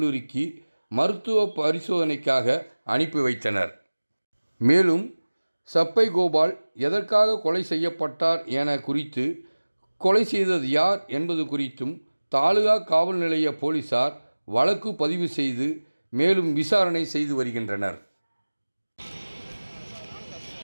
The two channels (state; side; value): inverted; both; correlation -1.00